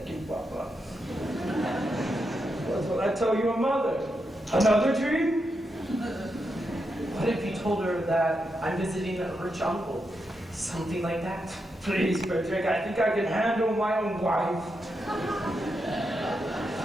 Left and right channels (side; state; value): both; normal; correlation 0.85